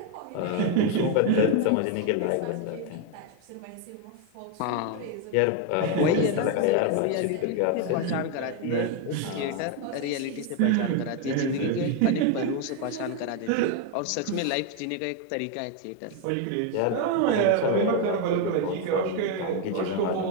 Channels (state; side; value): different; both; correlation 0.01